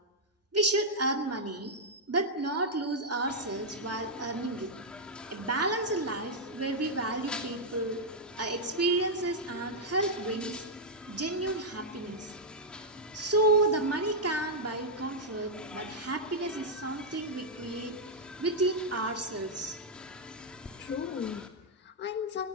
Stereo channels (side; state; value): both; normal; correlation -0.04